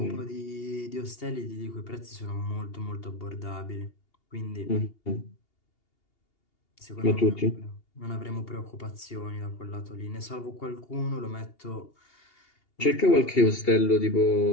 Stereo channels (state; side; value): late; right; 2.8 ms